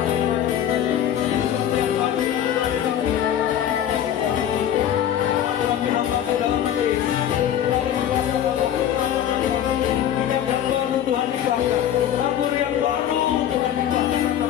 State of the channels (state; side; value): quieter; right; 10.3 dB